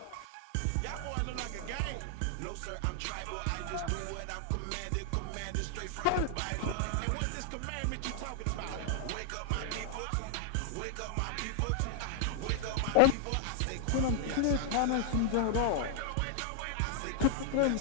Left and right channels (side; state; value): both; different; correlation 0.00